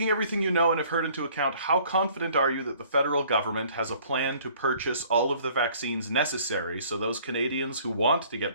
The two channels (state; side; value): inverted; both; correlation -0.55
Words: everything you know and have heard into account, how confident are you that the federal government has a plan to purchase all of the vaccines necessary so those Canadians who want to get